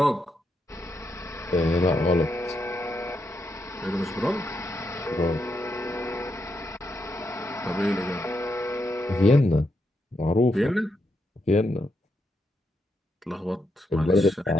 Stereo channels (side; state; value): both; normal; correlation 0.82